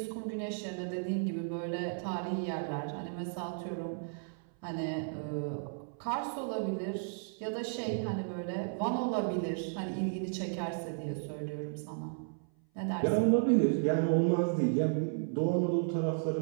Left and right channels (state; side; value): silent; left; 55 dB below the other